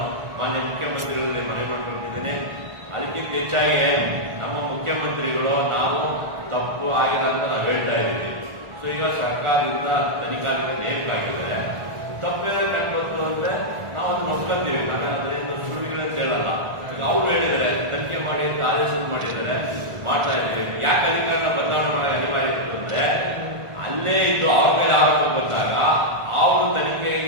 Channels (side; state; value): left; late; 1.4 ms